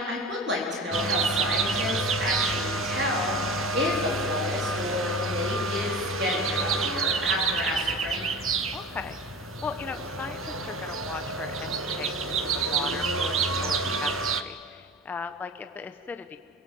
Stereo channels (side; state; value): both; normal; correlation 0.33